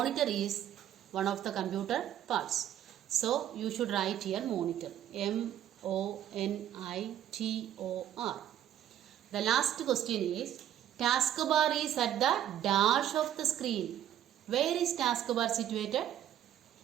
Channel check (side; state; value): left; quieter; 11.1 dB